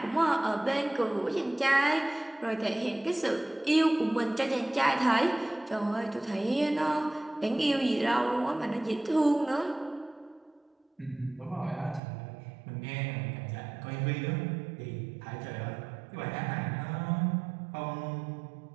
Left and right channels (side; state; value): left; drops out; at 12.0 s